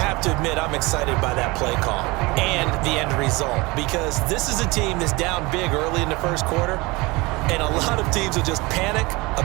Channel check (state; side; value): quieter; left; 23.9 dB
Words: to admit, I'm excited by that play call and the end result because this is a team that's down big early in the first quarter. And a lot of teams will just panic,